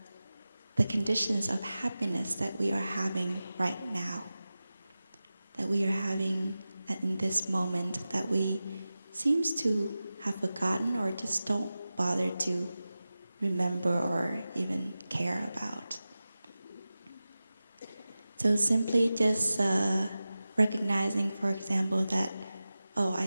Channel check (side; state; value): both; inverted; correlation -0.95